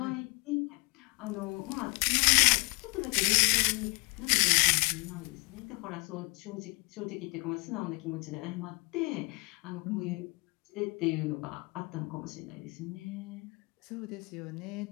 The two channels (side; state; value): right; quieter; 29.5 dB